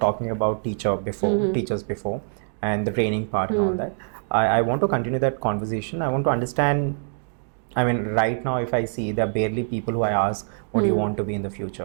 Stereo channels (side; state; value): left; silent; digital silence